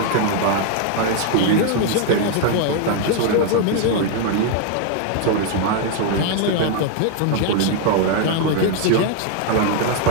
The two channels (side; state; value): both; different; correlation 0.00